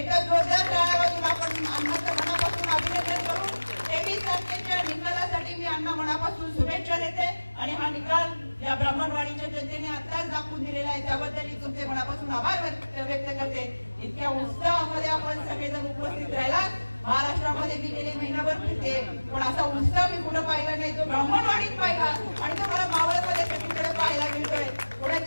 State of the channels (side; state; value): both; inverted; correlation -1.00